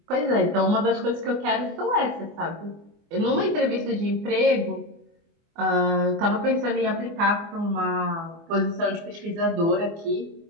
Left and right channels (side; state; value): left; late; 24 ms